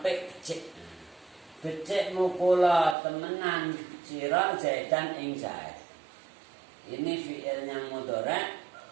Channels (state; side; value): drops out; left; at 3.0 s